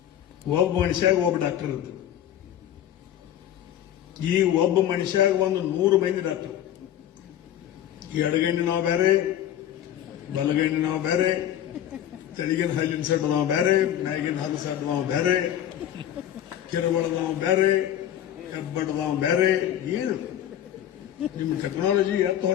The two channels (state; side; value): quieter; right; 11.2 dB